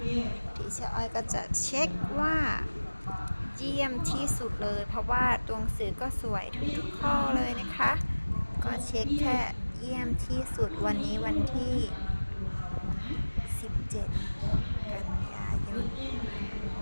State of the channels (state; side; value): inverted; both; correlation -1.00